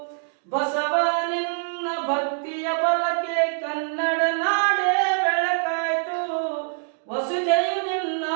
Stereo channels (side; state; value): left; silent; digital silence